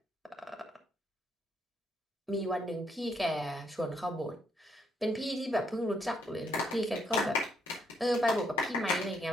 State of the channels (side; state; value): both; normal; correlation 0.74